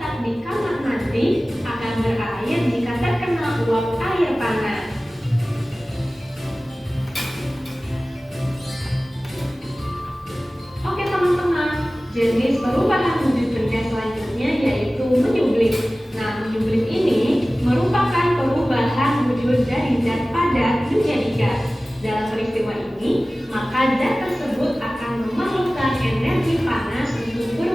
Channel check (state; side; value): normal; both; correlation 0.97